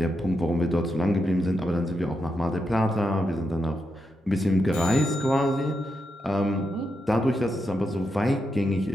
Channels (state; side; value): normal; both; correlation 0.85